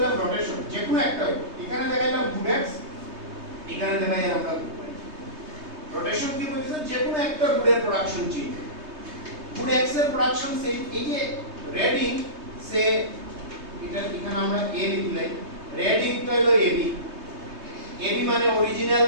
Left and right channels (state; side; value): late; left; 3.2 ms